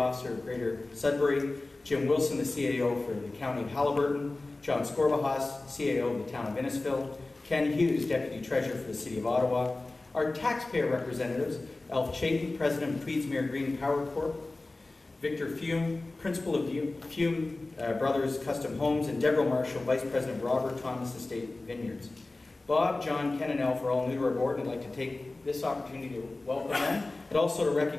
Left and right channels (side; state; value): right; quieter; 3.1 dB